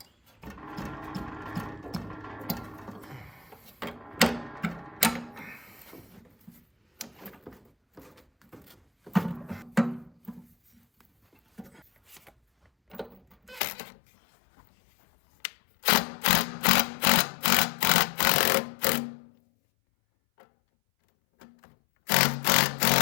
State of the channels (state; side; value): drops out; right; at 13.6 s